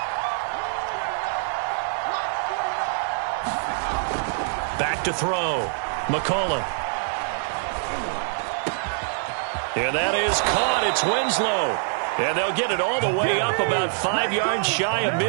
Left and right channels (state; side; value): silent; left; 62 dB below the other